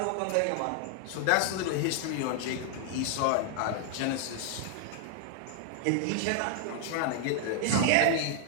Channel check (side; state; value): both; different; correlation -0.01